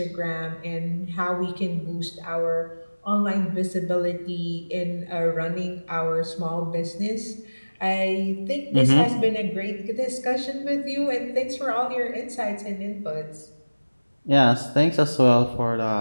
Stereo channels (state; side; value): inverted; both; correlation -1.00